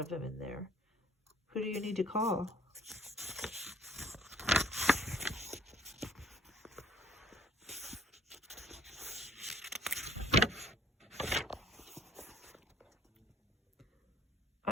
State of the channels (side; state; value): both; normal; correlation 0.58